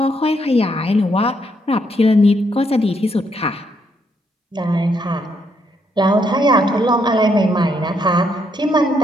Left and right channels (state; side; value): normal; both; correlation 0.75